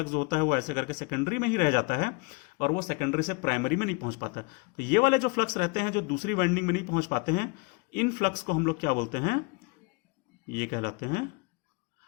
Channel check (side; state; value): right; quieter; 29.0 dB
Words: जो होता है वो ऐसे करके सेकेंडरी में ही रह जाता है और वो सेकेंडरी से प्राइमरी में नहीं पहुंच पाता। तो ये वाले जो फ्लक्स रहते हैं जो दूसरी वाइंडिंग में नहीं पहुंच पाते हैं, इन फ्लक्स को हम लोग क्या बोलते हैं, ये कहलाते हैं